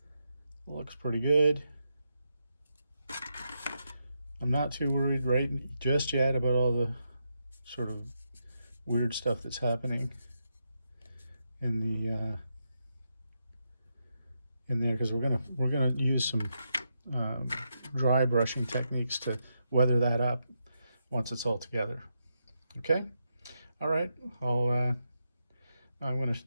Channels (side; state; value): both; inverted; correlation -0.84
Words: Looks pretty good. I'm not too worried right just yet about all the sort of weird stuff that's happening in the in there, because we're gonna use some dry brushing techniques to weather that up once it's all together. Okay. All right. I'm going to